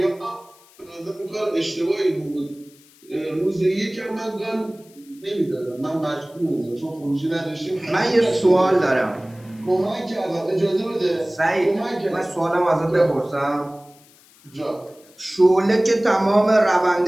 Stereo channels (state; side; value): noise; left; hiss, 27 dB below the sound